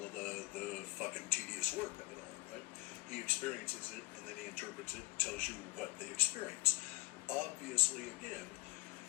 of the fucking tedious work of it all, right? He experiences it, and then he interprets it, tells you what they experience. Obviously, again,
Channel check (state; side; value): quieter; right; 22.0 dB